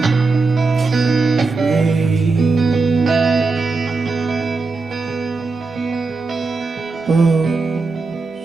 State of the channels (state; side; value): quieter; left; 4.0 dB